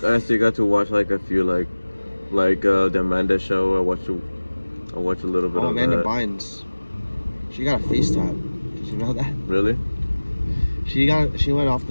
I still got to watch like a few like the Amanda show. I watched a little bit of Amanda that. Bynes. She got a face tap. Did you know that? Really? She went off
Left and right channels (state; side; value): inverted; both; correlation -1.00